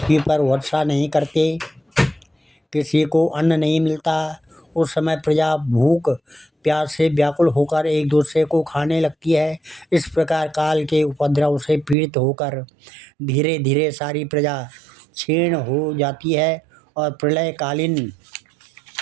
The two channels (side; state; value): left; drops out; at 12.0 s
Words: पर वर्षा नहीं करते, किसी को अन्न नहीं मिलता। उस समय प्रजा भूख प्यास से व्याकुल होकर एक दूसरे को खाने लगती है। इस प्रकार काल के उपद्रव से पीड़ित होकर धीरे धीरे सारी प्रजा क्षीण हो जाती है और